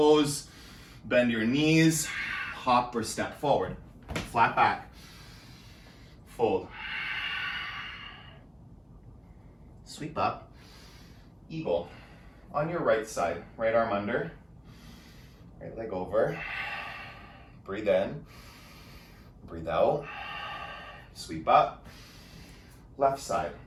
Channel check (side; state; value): both; identical; correlation 1.00